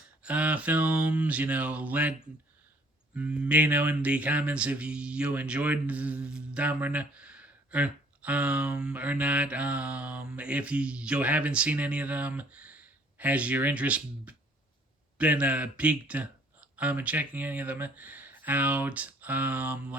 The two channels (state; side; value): normal; both; correlation 0.58